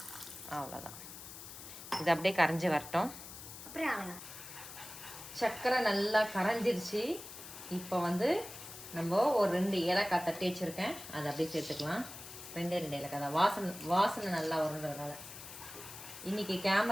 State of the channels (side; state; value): left; noise; hiss, 13 dB below the sound